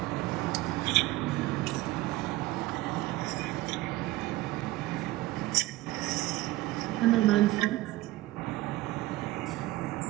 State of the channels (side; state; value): left; quieter; 17.8 dB